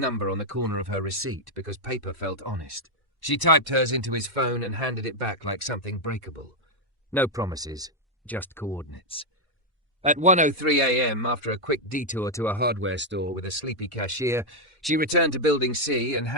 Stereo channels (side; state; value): both; normal; correlation -0.01